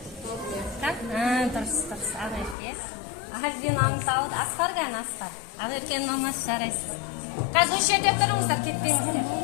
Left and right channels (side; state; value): right; drops out; at 2.6 s